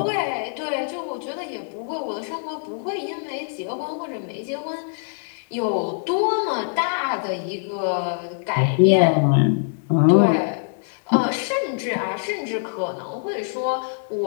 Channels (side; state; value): right; silent; 63 dB below the other